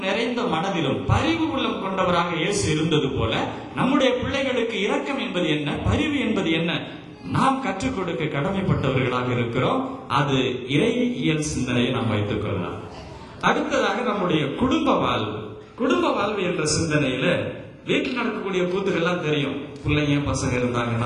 நிறைந்த மனதிலும் பரிவு உள்ளம் கொண்டவராக இயேசு இருந்தது போல நம்முடைய பிள்ளைகளுக்கு இரக்கம் என்பது என்ன, பரிவு என்பது என்ன, நாம் கற்றுக் கொடுக்க கடமைப்பட்டவர்களாக இருக்கிறோம். அது இறையியல் சிந்தனையை நாம் வைத்துக் கொள்ளலாம். அடுத்ததாக நம்முடைய குடும்ப வாழ்வு என்ற சிந்தனையில வீட்டில் நடக்கக்கூடிய கூத்துக்கள்லாம் தெரியும். பிள்ளைங்க பசங்க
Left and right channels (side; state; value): both; identical; correlation 1.00